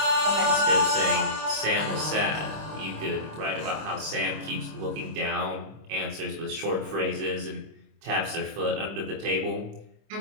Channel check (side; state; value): left; late; 25 ms